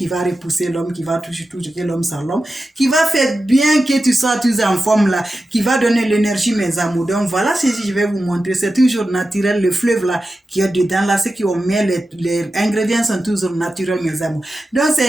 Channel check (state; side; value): normal; both; correlation 0.92